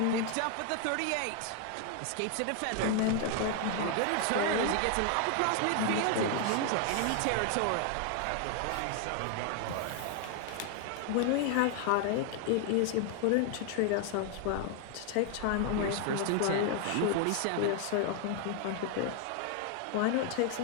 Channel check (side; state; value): both; different; correlation 0.00